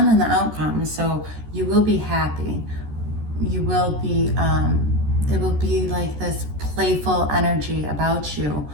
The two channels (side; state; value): left; late; 14 ms